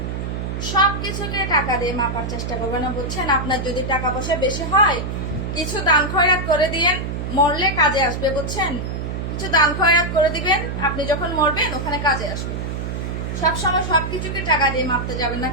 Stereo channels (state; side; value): noise; right; hum, 4 dB below the sound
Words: সবকিছুকে টাকা দিয়ে মাপার চেষ্টা করবেন না, বুঝছেন? আপনার যদি টাকা পয়সা বেশি হয় কিছু দান খয়রাত করে দিয়েন, মরলে কাজে আসবে, বুঝছেন? কিছু দান খয়রাত করে দিবেন, আপনি যখন মরবেন ওখানে কাজে আসবে। সবসময় সবকিছুকে টাকা দিয়ে মাপতে যাবেন না,